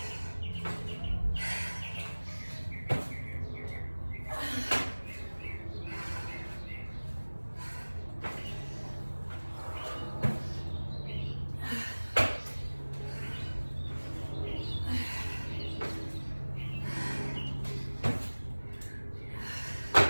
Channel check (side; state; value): both; inverted; correlation -1.00